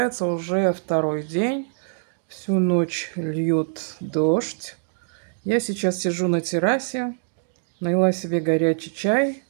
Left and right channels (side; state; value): left; silent; digital silence